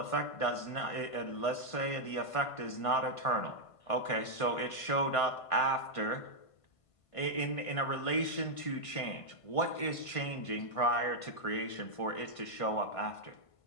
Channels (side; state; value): right; late; 1.5 ms